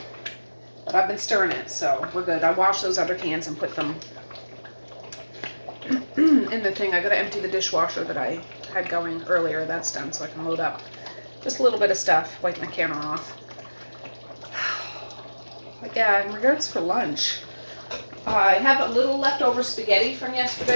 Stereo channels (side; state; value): both; inverted; correlation -1.00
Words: But I've been stirring it, so we're good. I washed those other cans and put them in the thing. I gotta empty the dishwasher that I had going earlier. That's done, so I can load up just a little bit of stuff, wipe my counter off. But yeah, in regards for lunch, I have a little leftover spaghetti from